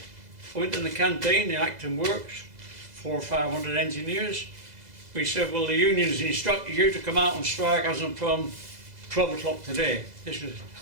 I went in the canteen in Acton Works, 400 or 500 engineers. We said, "Well, the union's instructed you to come out and strike as from 12 o'clock today." This was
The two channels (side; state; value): left; late; 2.0 ms